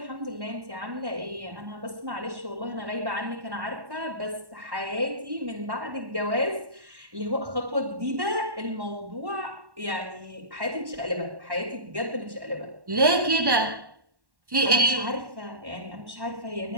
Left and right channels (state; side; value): late; left; 1.1 ms